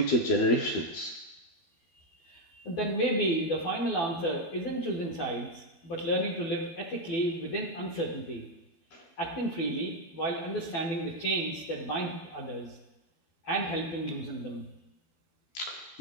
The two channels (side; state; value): right; late; 12 ms